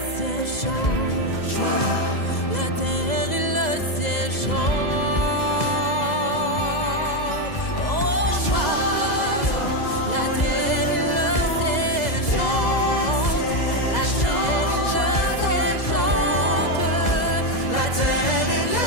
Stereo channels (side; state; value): right; late; 2.0 ms